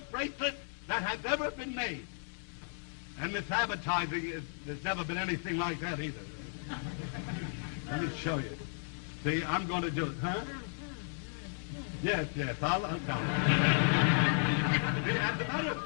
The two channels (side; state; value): right; silent; digital silence